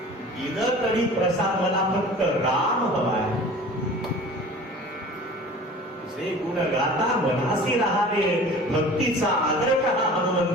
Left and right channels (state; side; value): normal; both; correlation 0.42